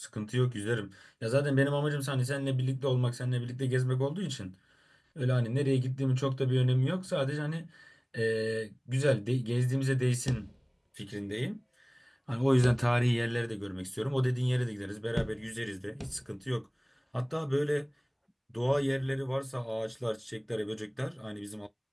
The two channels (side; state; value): both; identical; correlation 1.00